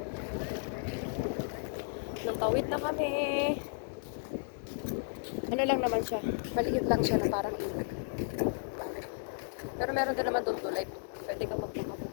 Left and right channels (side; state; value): right; silent; 55 dB below the other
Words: Nang tawid na kami. Ano lang naman siya. Maliit lang siya na parang ilog. Pero meron din naman doon tulay. Pwede ka magpapapit